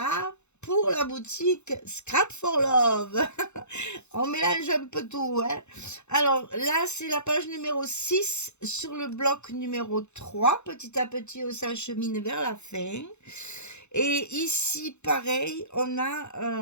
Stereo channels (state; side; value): late; right; 0.82 ms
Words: pour la boutique Scrap for Love. On mélange un peu tout, hein. Alors là, c'est la page numéro 6 sur le bloc numéro 3. Petit à petit, on s'achemine vers la fin. Et ici, pareil, on